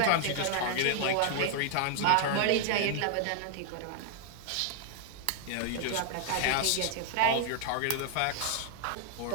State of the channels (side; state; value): both; different; correlation -0.01